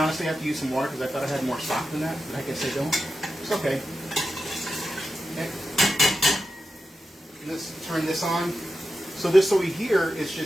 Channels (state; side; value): normal; both; correlation 0.90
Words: have to use some water because I thought I had more stock than that, but I guess I don't. It's okay. Okay. Let's turn this on. So this over here is